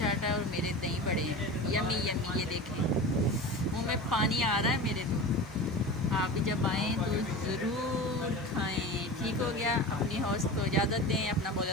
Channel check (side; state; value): both; normal; correlation 0.31